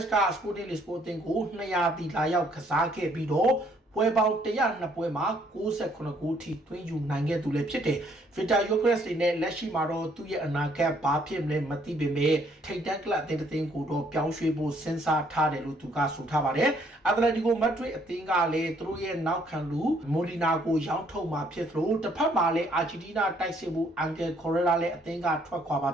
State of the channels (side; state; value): both; normal; correlation 0.66